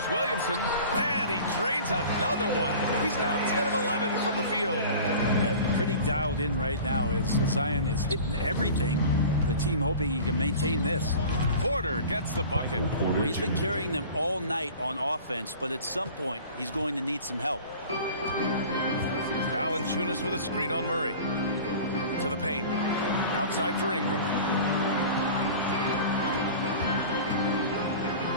Williamson. And he drains another one. He's now 10 of 11 from the field. And pretty dialed in right now as Zion is hitting everything. The team hoping he can maintain this. Porter gets the bucket. Well, he's been carrying them all night on offense, but at some point, he's going to need some help. Valanciunas with a screen on Murray. To the paint. Outside for Ingram.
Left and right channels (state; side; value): inverted; both; correlation -0.40